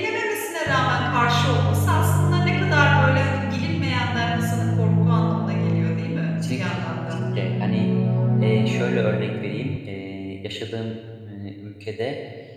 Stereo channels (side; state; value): both; identical; correlation 1.00